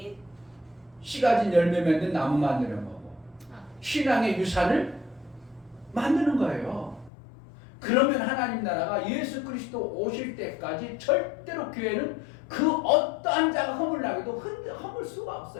씨 가진 열매 맺는 나무 만드는 거고 신앙의 유산을 만드는 거예요. 그러면 하나님 나라가 예수 그리스도 오실 때까지 절대로 교회는 그 어떠한 자가 허물나게도 허물 수가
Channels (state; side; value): drops out; right; at 7.1 s